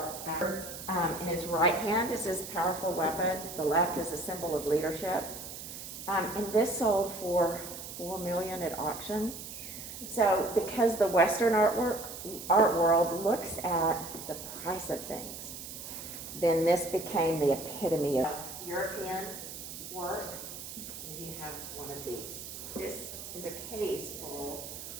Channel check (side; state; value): right; noise; hiss, 10 dB below the sound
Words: in his right hand is his powerful weapon, the left is a symbol of leadership. And this sold for $4 million at auction. So because the Western art world looks at the price of things, then this became the epitome of European work. And you have one of these. This is a case full